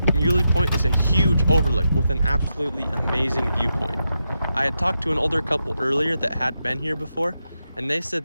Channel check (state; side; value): inverted; both; correlation -0.86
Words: Muley Point is a huge overlook with an absolutely amazing viewpoint. I had talked to an older couple earlier that had been here before, and they